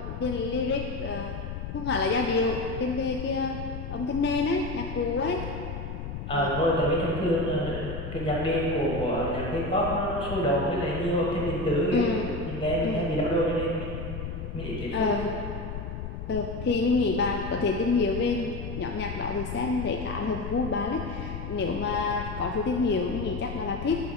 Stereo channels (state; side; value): noise; left; rumble, 7 dB below the sound